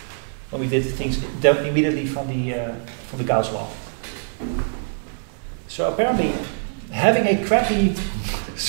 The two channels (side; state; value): left; silent; 58 dB below the other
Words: When we did things immediately from the Gauss law. So apparently, having a crappy